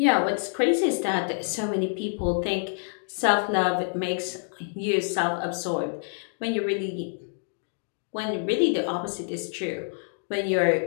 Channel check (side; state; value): right; silent; digital silence